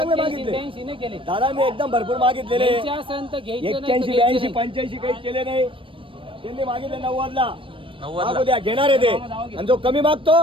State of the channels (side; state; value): left; late; 0.25 ms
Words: 81, मागितले 82 नाही केले. दादा. मी एकदम भरपूर मागितलेले. घ्यायचे असेल तर घ्यायचे, नाही तर 81 घ्यायचे 82 नाही. 85 काही केले नाही. त्यांनी मागितले 90ला. 90ला. मागू द्या. घेणार आहे ते. आणि जो कमी